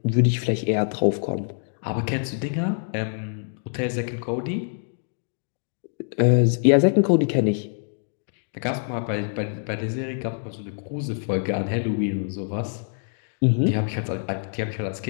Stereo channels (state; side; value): silent; right; digital silence